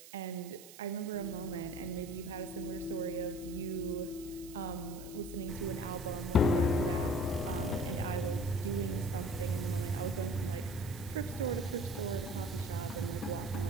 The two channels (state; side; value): noise; right; hiss, 17 dB below the sound